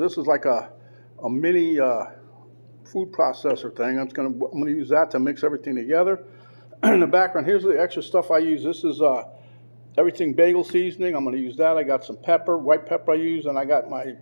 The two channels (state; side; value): inverted; both; correlation -1.00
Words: is like a mini food processor thing. I'm gonna use that to mix everything together. In the background, here's the extra stuff I use. This is Everything Bagel seasoning. I'm going to use that. I got some pepper, white pepper I use, and I got my